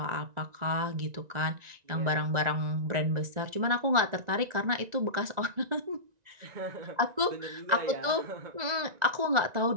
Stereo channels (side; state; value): left; late; 1.9 ms